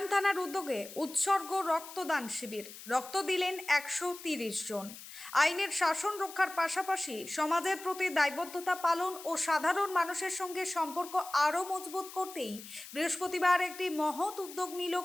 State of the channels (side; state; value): left; noise; hiss, 14 dB below the sound